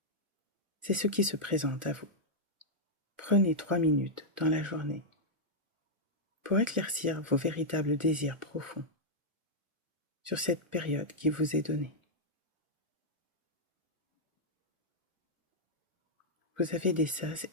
C'est ce qui se présente à vous. Prenez 3 minutes dans la journée pour éclaircir vos véritables désirs profonds sur cette période qui vous est donnée. Vous avez des sas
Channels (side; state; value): left; late; 1.4 ms